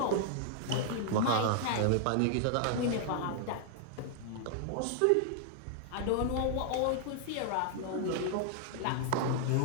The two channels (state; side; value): different; both; correlation 0.00